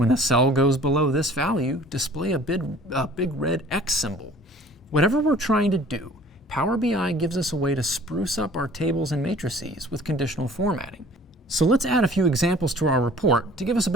a cell goes below this value, display a big red X symbol. Whatever we're trying to do, Power BI gives us a way to spruce up our tables and matrices with conditional formatting. So let's add a few examples to our report to give us a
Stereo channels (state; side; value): normal; both; correlation 0.50